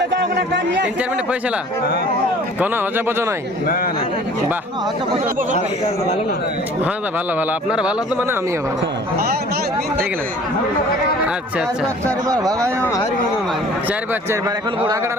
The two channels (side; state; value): both; normal; correlation 0.49